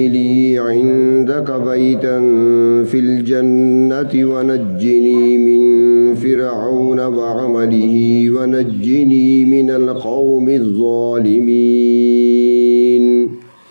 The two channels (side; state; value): both; inverted; correlation -1.00